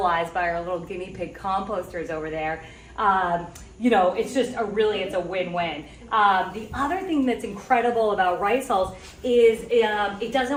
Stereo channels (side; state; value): both; identical; correlation 1.00